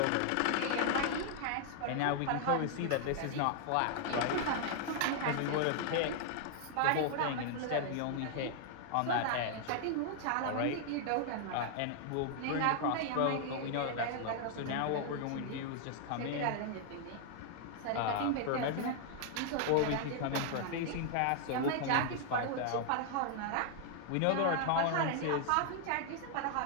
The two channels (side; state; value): both; different; correlation 0.00